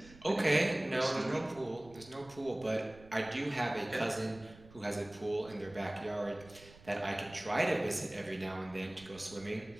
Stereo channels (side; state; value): right; noise; rumble, 21 dB below the sound